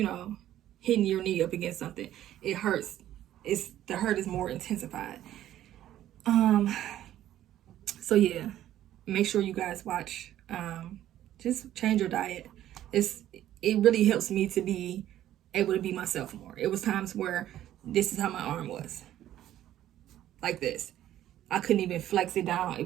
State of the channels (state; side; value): quieter; left; 12.5 dB